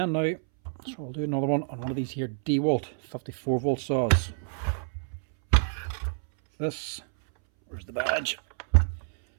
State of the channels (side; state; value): left; silent; 59 dB below the other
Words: now, so we'll do another one on one of these here Dewalt 54 volt saws. This, where's the badge,